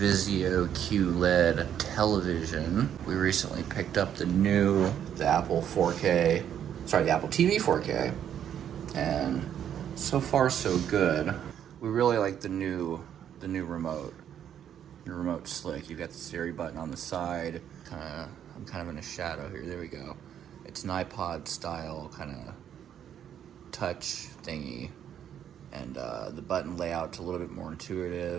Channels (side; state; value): left; quieter; 9.6 dB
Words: QLED television. We recently picked up the Apple TV 4K, and so far so good. We really like the new remote. The remote's slick. You've got the Siri button on the side. I'm kind of in a shadow here. There we go. It's an iPod style kind of touch thingy. And the button layout's a little bit more